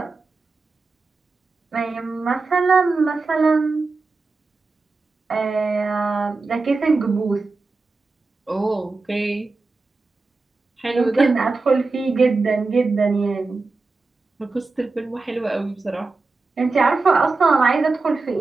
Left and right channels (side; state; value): left; quieter; 3.8 dB